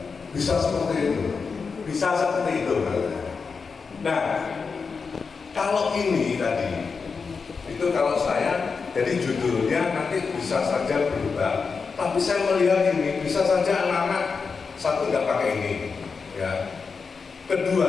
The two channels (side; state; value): right; quieter; 5.1 dB